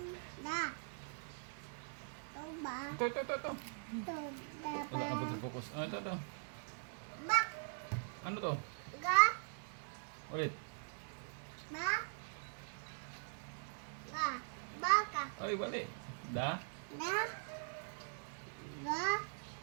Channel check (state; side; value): silent; left; digital silence